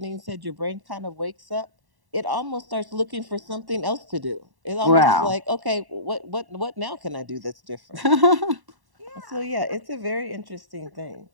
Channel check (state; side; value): late; left; 1.1 ms